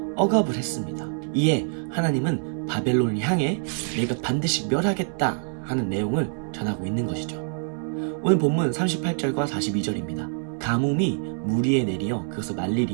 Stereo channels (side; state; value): left; silent; digital silence